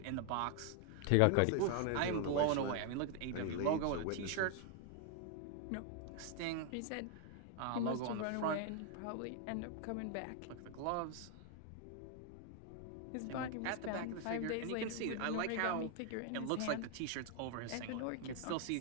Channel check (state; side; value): different; both; correlation 0.00